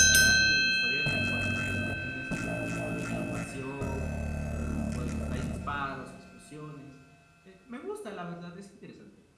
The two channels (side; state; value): both; identical; correlation 1.00